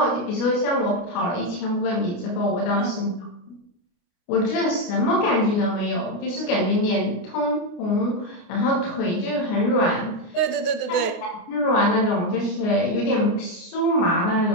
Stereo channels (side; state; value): right; late; 29 ms